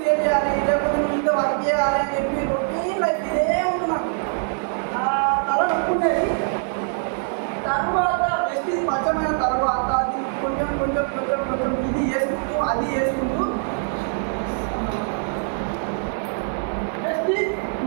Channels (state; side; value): silent; left; 57 dB below the other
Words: లేకపోతే నువ్వు ఇంత వర్క్ చేయాలి అని చెప్పి రొటీన్ లైఫ్ ఇదే ఉంటున్నాను. తల నొప్పుండేది. తర్వాత బెస్ట్ స్వచ్ఛమైన తర్వాత అది కొంచెం కొంచెం కొంచెం కొంచెం ఇది చేసుకుంటూ అది చేసుకుంటూ బెస్ట్